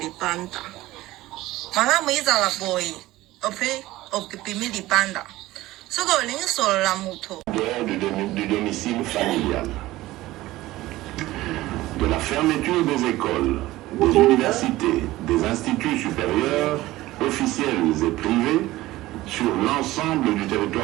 panda malamu izala boy ope pimili panda du domicile familial, de la fermeture des écoles, des universités, des instituts supérieurs, officiels et privés, sur l'ensemble du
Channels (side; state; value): left; quieter; 17.3 dB